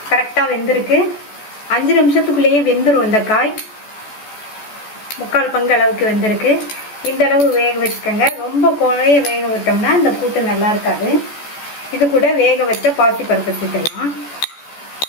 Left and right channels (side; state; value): right; late; 14 ms